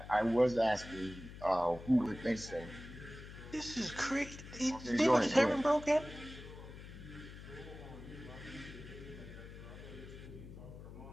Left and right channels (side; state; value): left; noise; hum, 13 dB below the sound